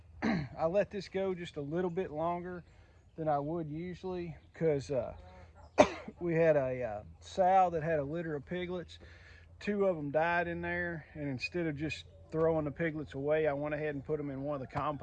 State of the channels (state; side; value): identical; both; correlation 1.00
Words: let this go just a little bit longer than I would usually because we had a sow that had a litter of piglets. Two of them died in there, and instead of just throwing the piglets away, I went ahead and put them in one of the